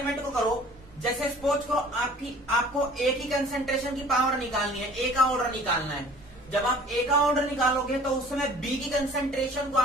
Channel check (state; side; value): normal; both; correlation 0.49